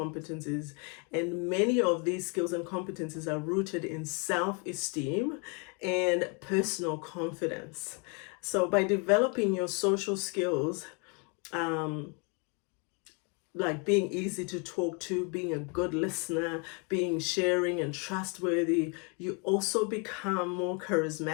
And many of these skills and competencies are rooted in self-esteem and personal confidence. So by developing your social skills, like being easy to talk to, being a good listener, being sharing and trustworthy, you also become more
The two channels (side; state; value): right; quieter; 34.6 dB